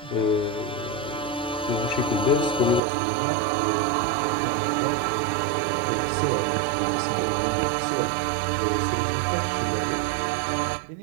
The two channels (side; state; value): left; drops out; at 2.8 s